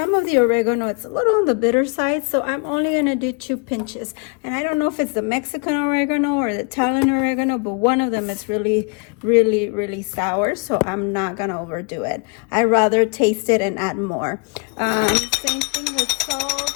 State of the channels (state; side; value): quieter; right; 33.5 dB